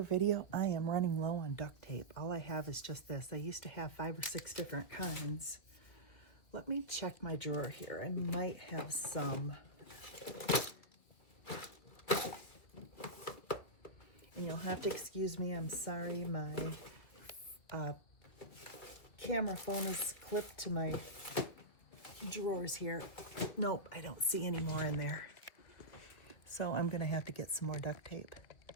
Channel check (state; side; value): late; right; 2.4 ms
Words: video, I am running low on duct tape. All I have is just this. I used to have 5 or 6 different kinds. Let me check my drawer here. I might have some. And you'll have to excuse me. I'm sorry. My camera phone is clipped to my drawers here. Nope, I don't see any more in there. So I'm going to have to get some more duct tape.